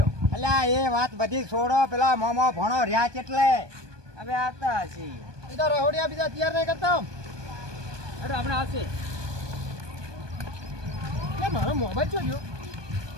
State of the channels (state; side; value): late; left; 1.2 ms